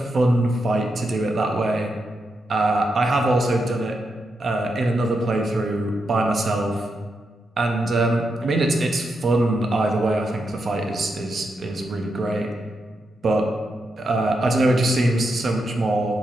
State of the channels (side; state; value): both; normal; correlation 0.84